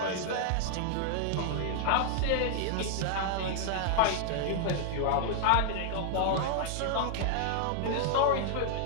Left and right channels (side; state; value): both; different; correlation -0.01